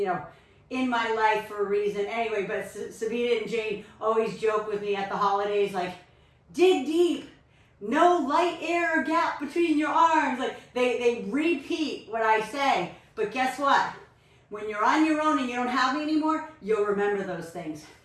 know, in my life for a reason. Anyway, but Sabina and Jane always joke with me at the holidays, like, dig deep. No light air or gap between your arms. Like they repeat what I say. But guess what? When you're on your own and you don't have me anymore, you'll remember those things.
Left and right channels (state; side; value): identical; both; correlation 1.00